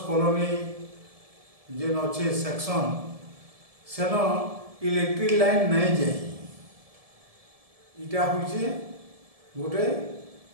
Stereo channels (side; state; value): left; late; 1.7 ms